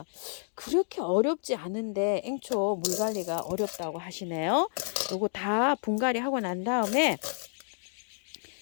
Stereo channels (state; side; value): silent; right; digital silence